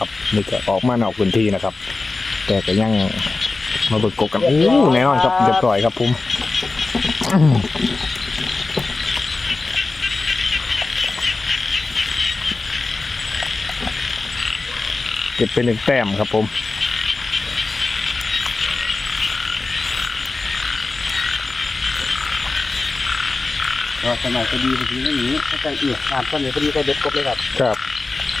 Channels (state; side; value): quieter; right; 3.6 dB